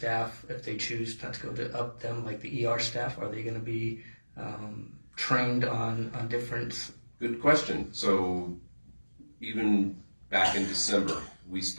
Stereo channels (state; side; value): inverted; both; correlation -1.00